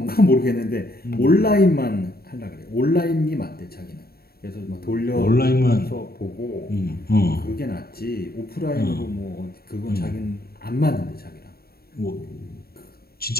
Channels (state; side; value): late; right; 0.45 ms